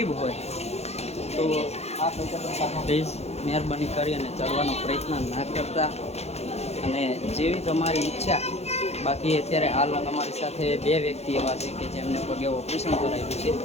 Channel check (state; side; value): late; right; 0.31 ms